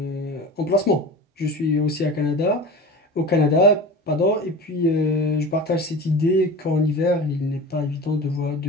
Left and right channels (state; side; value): normal; both; correlation 0.34